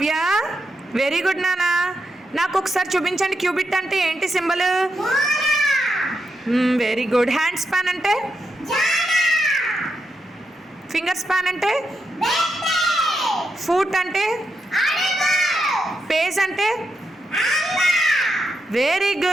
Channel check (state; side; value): normal; both; correlation 0.84